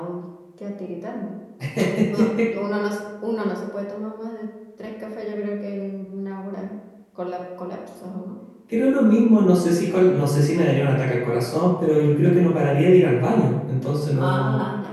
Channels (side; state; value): both; identical; correlation 1.00